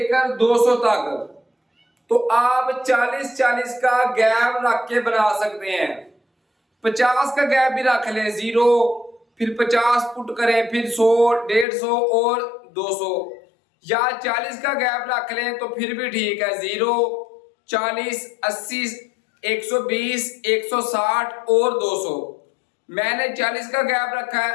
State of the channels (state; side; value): drops out; right; at 11.7 s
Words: 200 तक। तो आप 40-40 का गैप रख के बना सकते हैं। 50 का गैप भी रख लें, 0 फिर 50 पुट करें, फिर 100, 150 और 200, या 40 का गैप रख लें तो फिर भी ठीक है। 0, 40, 80, 120, 160 और 200। मैंने 40 का गैप रखा